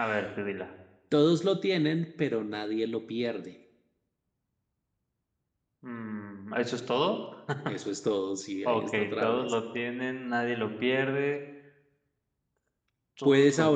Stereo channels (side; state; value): both; identical; correlation 1.00